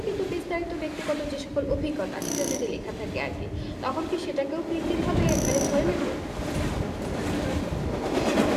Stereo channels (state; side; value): identical; both; correlation 1.00